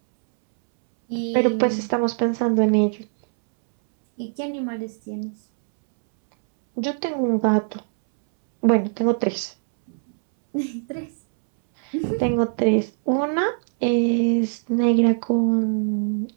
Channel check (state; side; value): silent; left; 64 dB below the other